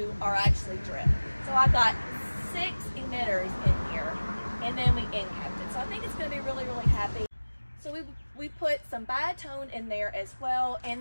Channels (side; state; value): both; inverted; correlation -1.00